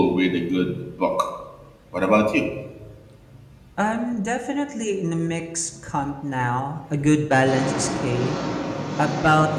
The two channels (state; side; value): identical; both; correlation 1.00